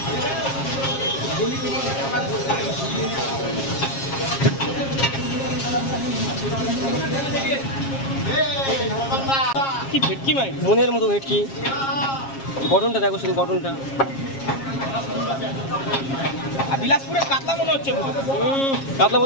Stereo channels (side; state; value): right; late; 7.4 ms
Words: কি ভেটকি ভাই, মনের মতো ভেটকি। গঠনটা দেখো শুধু, গঠনটা। আর বিলাসপুরের কাতলা মনে হচ্ছে। কাতলা